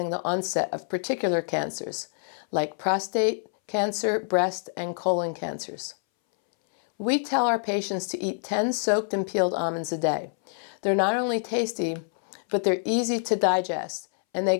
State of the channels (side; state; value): right; silent; 61 dB below the other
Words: the onset of particular cancers, like prostate cancer, breast, and colon cancers. We tell our patients to eat 10 soaked and peeled almonds a day. They're not only tasty, but they're easy to digest, and they